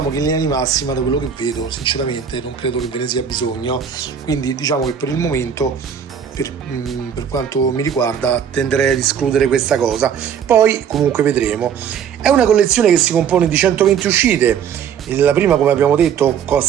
che in linea di massima, da quello che vedo, sinceramente non credo che ve ne sia bisogno, quindi diciamo che per il momento per quanto mi riguarda tenderei ad escludere questa cosa, poi comunque vedremo. È una collezione che si compone di 120 uscite. La prima, come abbiamo detto,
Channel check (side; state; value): left; quieter; 7.8 dB